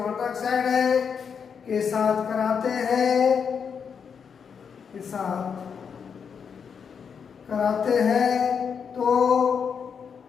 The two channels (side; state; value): right; quieter; 6.6 dB